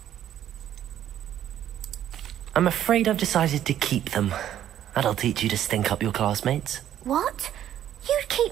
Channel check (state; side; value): quieter; left; 11.1 dB